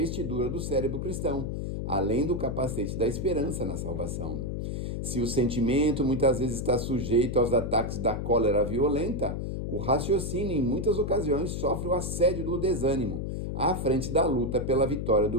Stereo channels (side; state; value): left; noise; hum, 3 dB below the sound